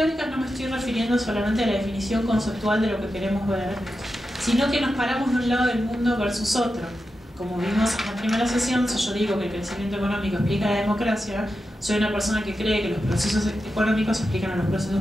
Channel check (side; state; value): both; normal; correlation 0.90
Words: no me estoy refiriendo solamente a la definición conceptual de lo que queremos ver, sino que nos paramos de un lado del mundo versus otro. Como vimos en la primera sesión, si yo digo que el crecimiento económico explica la democracia, soy una persona que cree que los procesos económicos explican a los